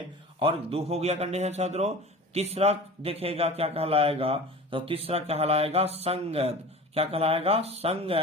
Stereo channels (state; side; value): normal; both; correlation 0.37